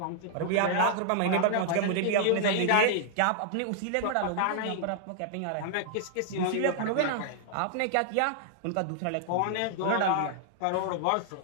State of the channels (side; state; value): both; different; correlation -0.01